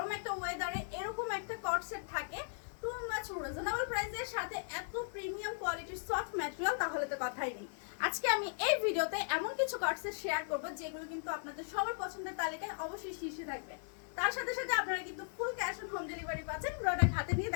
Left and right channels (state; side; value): silent; right; 53 dB below the other